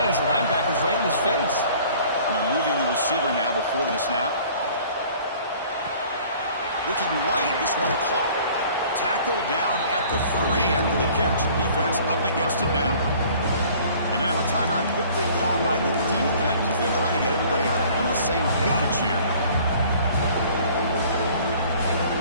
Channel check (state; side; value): inverted; both; correlation -0.52